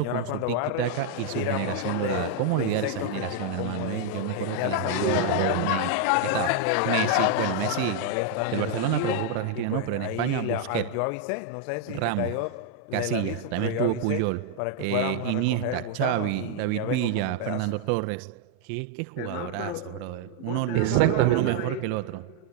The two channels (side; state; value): both; different; correlation 0.00